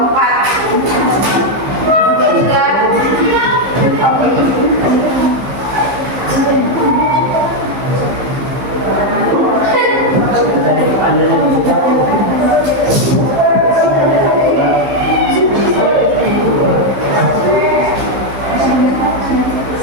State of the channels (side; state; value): left; late; 15 ms